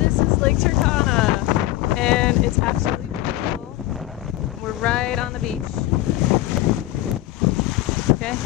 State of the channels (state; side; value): quieter; right; 15.5 dB